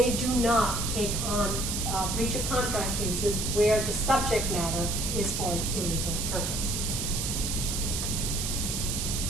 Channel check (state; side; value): noise; right; hiss, 2 dB below the sound